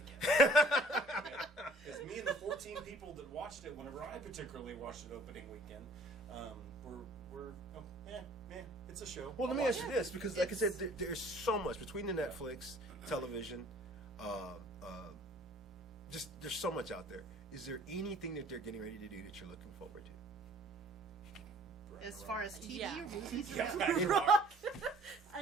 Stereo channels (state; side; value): normal; both; correlation 0.53